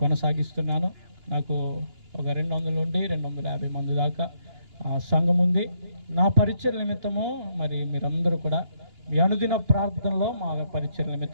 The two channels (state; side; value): late; left; 2.9 ms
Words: కొనసాగిస్తున్నాను. నాకు ఒక 200 నుండి 250 మంది దాకా సంఘం ఉంది. నా పరిచర్య నిమిత్తము మరి మీరందరూ కూడా మీ అనుదిన ప్రార్థనలో మా పరిచర్య